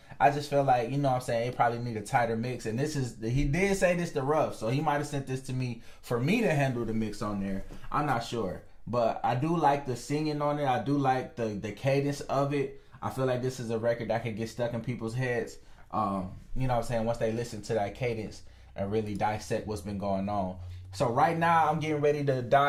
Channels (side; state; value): both; identical; correlation 1.00